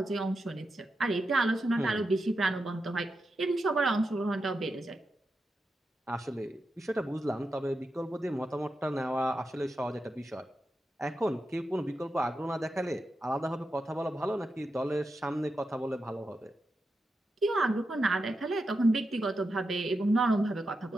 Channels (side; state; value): both; normal; correlation 0.88